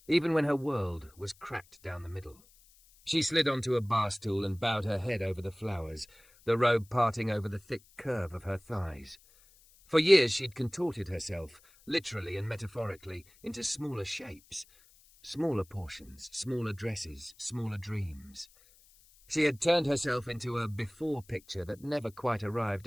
even when her world was cracked down the middle. She slid onto a bar stool and bowed her head over the flowers, the robe parting over the thick curve of her thighs. For years she'd contorted herself, literally and metaphorically, into smaller shapes. Smaller portions, smaller dresses, smaller dreams. She had turned herself into a before picture that never quite arrived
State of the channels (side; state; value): left; noise; hiss, 28 dB below the sound